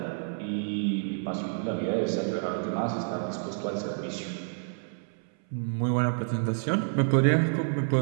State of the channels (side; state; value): left; silent; 59 dB below the other